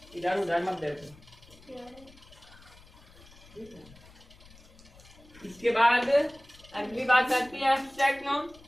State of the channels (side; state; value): left; noise; rumble, 23 dB below the sound